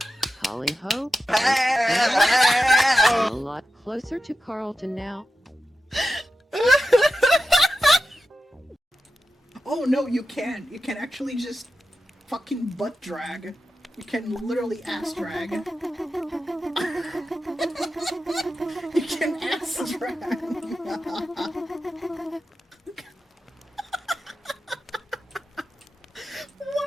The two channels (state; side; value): normal; both; correlation 0.90